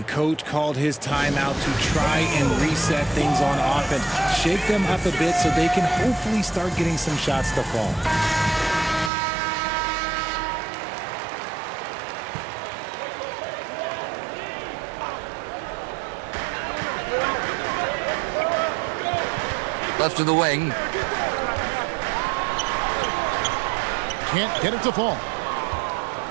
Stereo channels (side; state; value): left; drops out; at 9.1 s